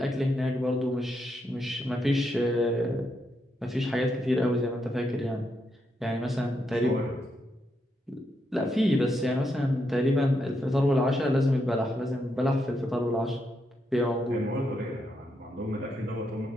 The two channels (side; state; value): both; normal; correlation 0.81